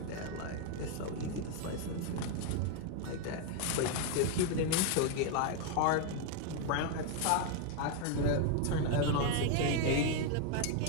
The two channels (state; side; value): different; both; correlation 0.00